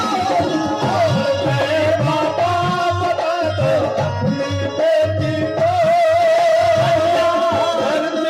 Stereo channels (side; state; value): both; identical; correlation 1.00